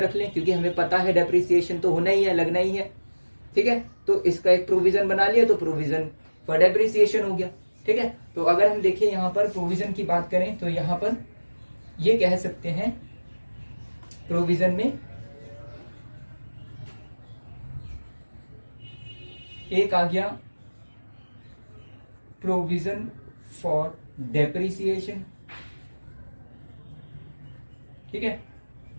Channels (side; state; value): both; inverted; correlation -1.00